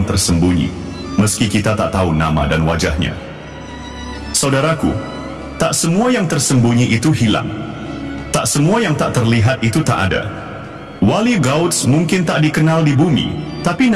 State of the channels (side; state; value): both; identical; correlation 1.00